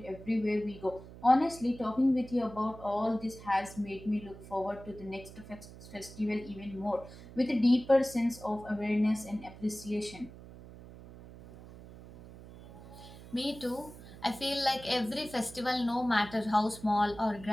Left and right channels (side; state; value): right; noise; hum, 17 dB below the sound